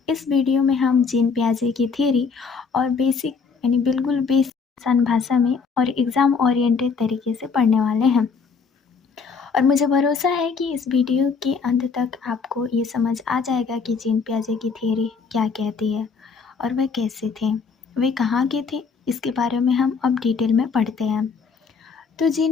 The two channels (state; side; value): quieter; right; 5.3 dB